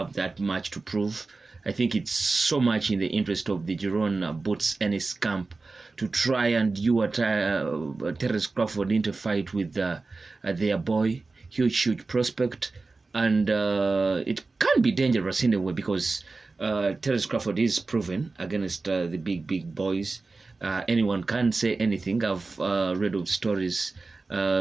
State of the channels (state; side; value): quieter; left; 3.8 dB